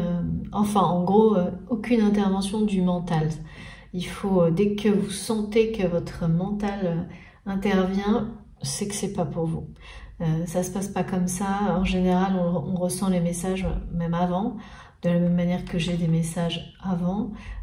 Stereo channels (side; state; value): both; identical; correlation 1.00